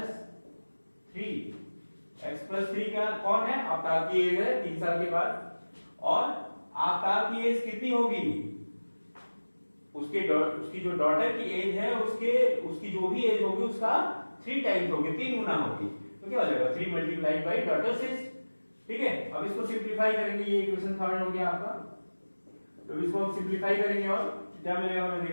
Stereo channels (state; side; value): inverted; both; correlation -1.00